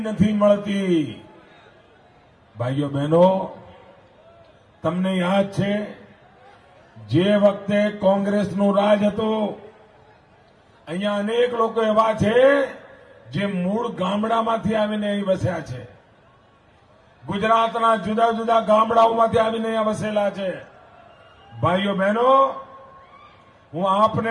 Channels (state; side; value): identical; both; correlation 1.00